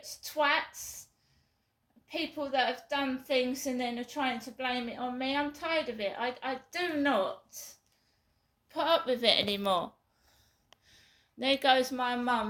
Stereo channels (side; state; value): both; identical; correlation 1.00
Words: twats, people that have done things and then are trying to blame it on me. I'm tired of it. I do not put up with it anymore. There goes my